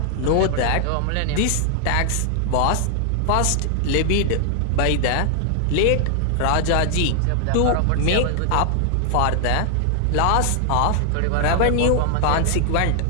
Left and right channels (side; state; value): both; different; correlation 0.00